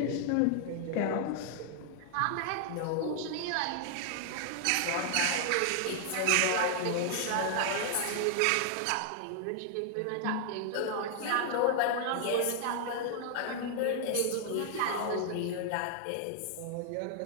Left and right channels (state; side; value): different; both; correlation 0.00